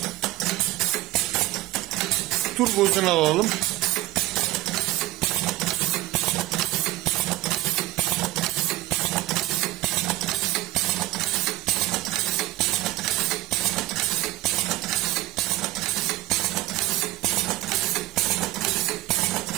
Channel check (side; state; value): left; quieter; 17.1 dB